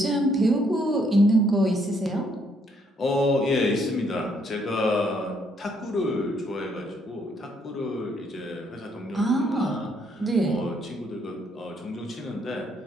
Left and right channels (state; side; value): normal; both; correlation 0.70